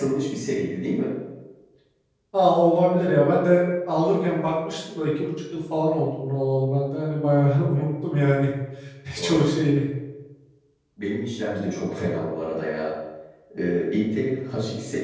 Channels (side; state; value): both; identical; correlation 1.00